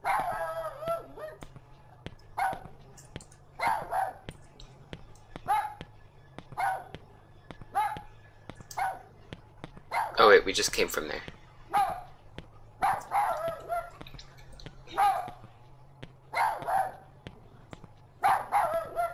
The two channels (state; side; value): identical; both; correlation 1.00